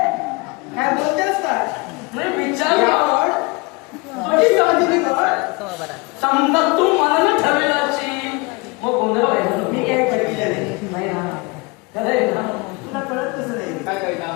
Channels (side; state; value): right; quieter; 27.3 dB